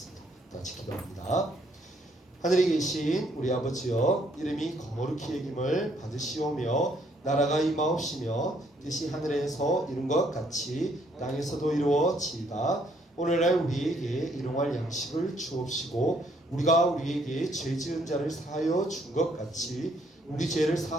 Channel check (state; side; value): normal; both; correlation 0.68